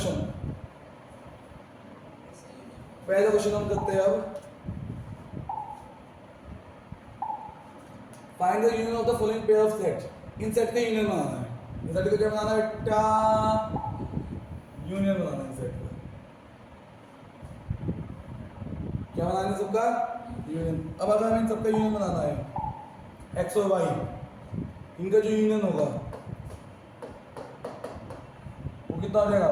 हम करते हैं अब, find the union of the following pair of set. In set का यूनियन बनाना है। इन सेट को क्या बनाना है बेटा, यूनियन बनाना है। इन सेट का क्या बनाना है सबका यूनियन। अब अगर हमें इन सबका यूनियन बनाना है एक्स और वाई, इनका जो यूनियन होगा वो कितना हो जाएगा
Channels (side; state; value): both; identical; correlation 1.00